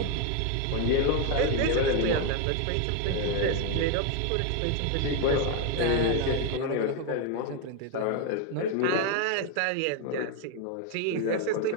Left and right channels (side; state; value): both; different; correlation 0.01